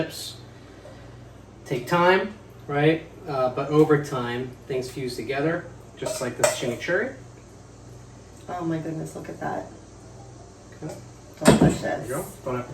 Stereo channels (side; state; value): both; identical; correlation 1.00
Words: take time, right? But over time, things fuse together, just like this chimichurri. Oh my goodness, look at that. Okay. Delicious. There you go. Bon